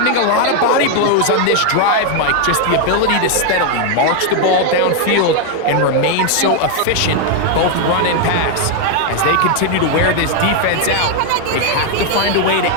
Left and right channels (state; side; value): different; both; correlation 0.01